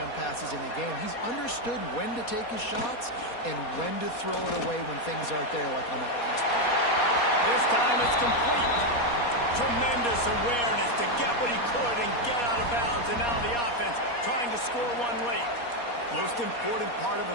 passes in the game. He's understood when to take his shots and when to throw it away when things aren't there, like on that last play. This time it's complete. Tremendous awareness to get what he could and get out of bounds, and now the offense trying to score one late. Most important part of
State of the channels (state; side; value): late; right; 4.2 ms